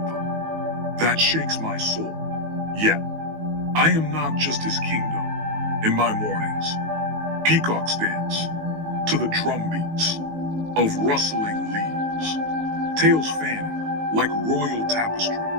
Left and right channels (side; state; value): left; late; 19 ms